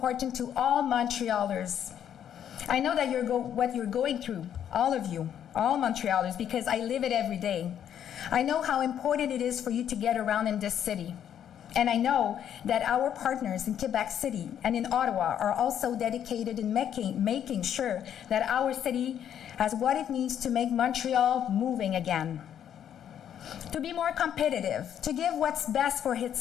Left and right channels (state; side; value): quieter; right; 9.6 dB